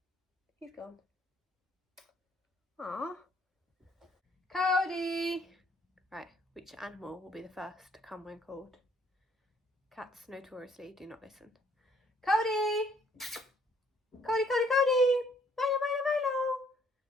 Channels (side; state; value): both; normal; correlation 0.64